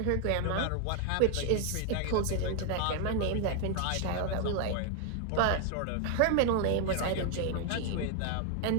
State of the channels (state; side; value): different; both; correlation 0.00